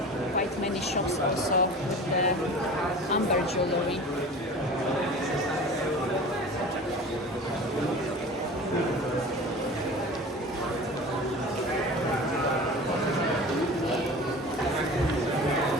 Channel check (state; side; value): normal; both; correlation 0.37